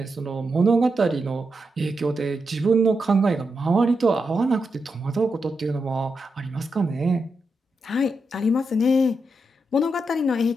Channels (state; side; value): normal; both; correlation 0.86